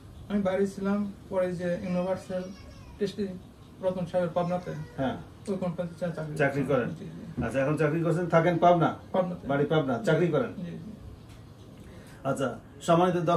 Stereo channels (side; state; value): both; identical; correlation 1.00